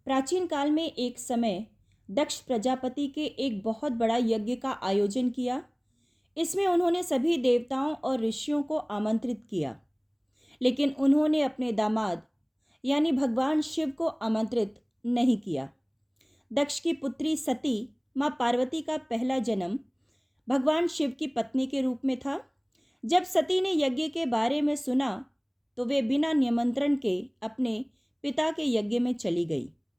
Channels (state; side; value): identical; both; correlation 1.00